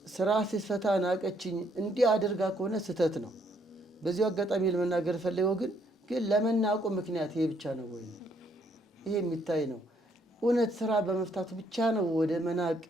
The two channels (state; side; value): normal; both; correlation 0.69